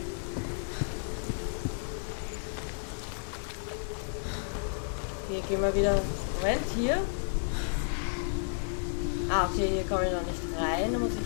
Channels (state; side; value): silent; right; 57 dB below the other